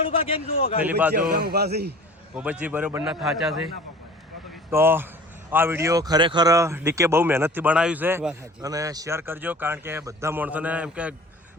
પેલી બાજુ ભૂપતજી બરોબરના થાચા છે તો આ વિડીયો ખરેખર ડીકે બહુ મહેનતથી બનાવ્યું છે અને શેર કરજો કારણ કે બધા માણસોને એમ કે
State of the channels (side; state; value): both; normal; correlation 0.44